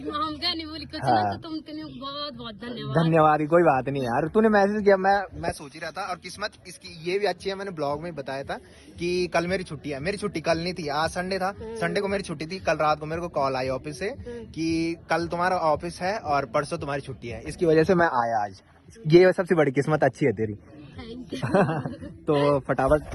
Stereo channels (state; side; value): identical; both; correlation 1.00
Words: क्या नहीं बोली कुछ ना, तो तुम बहुत बहुत धन्यवाद। कोई बात नहीं यार, तूने मैसेज किया, मैं सोच ही रहा था। और किस्मत इसकी ये भी अच्छी है, मैंने ब्लॉग में बताया था कि कल मेरी छुट्टी है। मेरी छुट्टी कल नहीं थी, आज संडे था। संडे को छुट्टी थी। कल रात को मेरे को कॉल आई ऑफिस से कि कल तुम्हारा ऑफिस है और परसों तुम्हारी छुट्टी है। इसकी वजह से मैं आया आज। ये सबसे बड़ी किस्मत अच्छी है तेरी। तो फटाफट